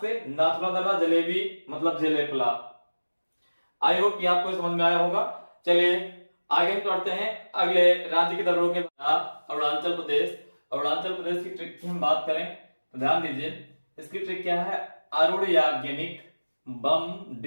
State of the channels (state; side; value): inverted; both; correlation -1.00